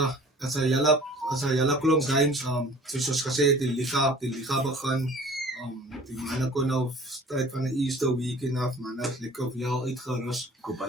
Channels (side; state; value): both; normal; correlation 0.47